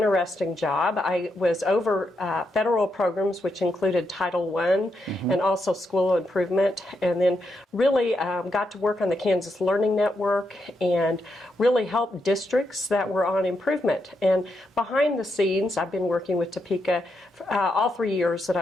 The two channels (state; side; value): normal; both; correlation 0.82